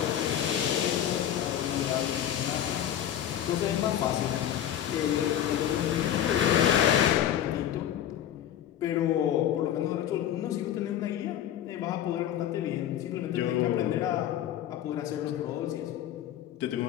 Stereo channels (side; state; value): right; quieter; 10.9 dB